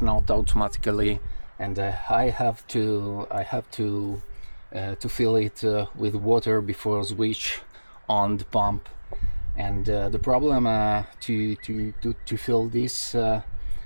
not automatically, and I have to fill it with water before switch on the pump. And the problem to fill this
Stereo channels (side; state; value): both; inverted; correlation -1.00